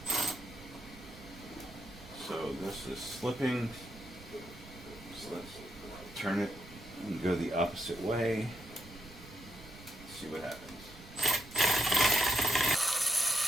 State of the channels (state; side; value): noise; right; rumble, 18 dB below the sound